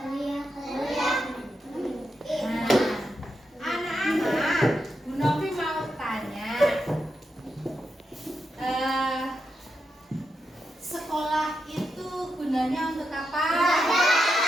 Sekolah itu gunanya untuk apa?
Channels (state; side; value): normal; both; correlation 0.85